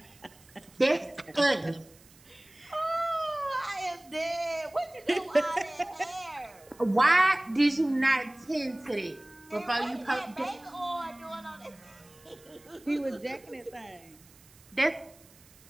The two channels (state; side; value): noise; right; hiss, 26 dB below the sound